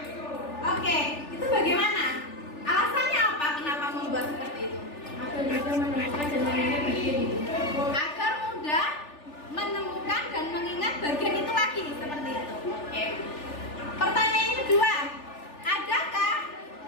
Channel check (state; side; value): late; right; 3.4 ms